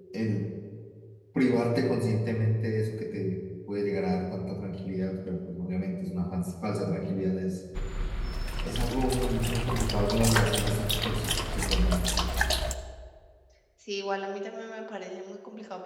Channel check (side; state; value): both; identical; correlation 1.00